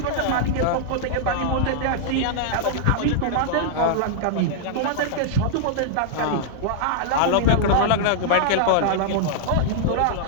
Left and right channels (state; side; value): different; both; correlation -0.01